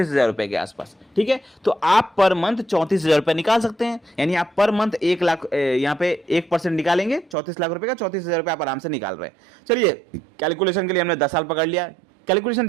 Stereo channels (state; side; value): drops out; left; at 7.4 s